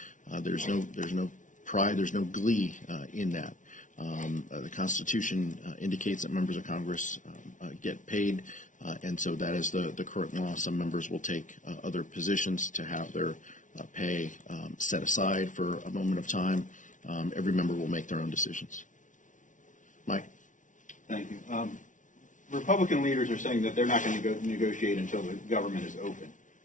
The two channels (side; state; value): right; late; 0.37 ms